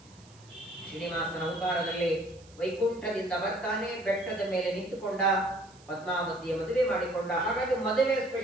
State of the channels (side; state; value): right; noise; hiss, 26 dB below the sound